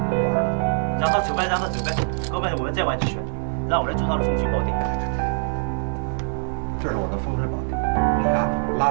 让他走呗，让他走呗，哥们，我们再玩几圈，让我来做他的风水宝地。这是我的风水宝地，你啊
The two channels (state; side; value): silent; left; digital silence